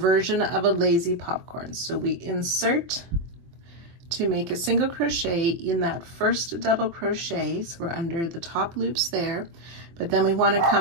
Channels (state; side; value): late; left; 24 ms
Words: of a lazy popcorn. So we insert to make a single crochet in that 1st double crochet. So we're under the top loops there, but then we want to